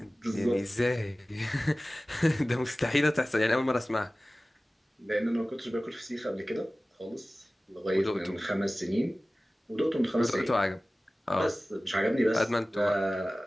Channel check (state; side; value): normal; both; correlation 0.97